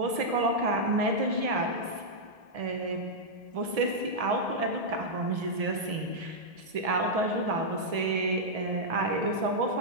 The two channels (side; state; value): left; late; 1.7 ms